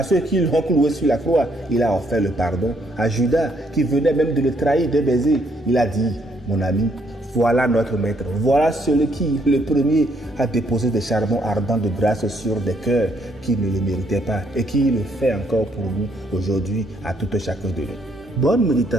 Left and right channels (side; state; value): both; normal; correlation 0.70